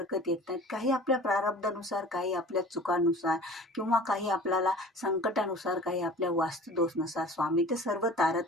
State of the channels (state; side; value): normal; both; correlation 0.43